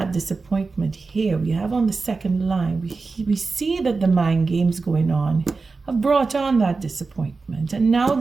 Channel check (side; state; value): left; quieter; 4.1 dB